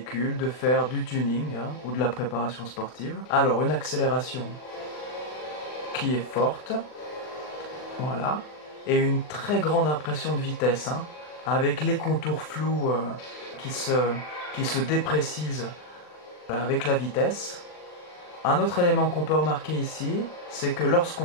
de faire du tuning ou de la préparation sportive. Alors une accélération qui est forte, voilà, et une très grande impression de vitesse, avec les contours flous qui se déprécisent avec la vitesse. Un autre élément qu'on peut remarquer ici, c'est que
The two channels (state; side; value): late; right; 40 ms